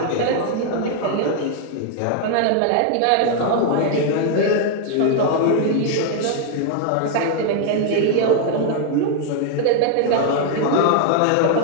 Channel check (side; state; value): both; different; correlation 0.00